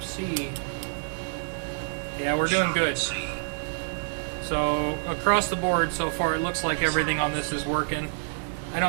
C. Yeah, we're doing good. So across the board so far, it looks like everything on this is working. I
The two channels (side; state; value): left; silent; digital silence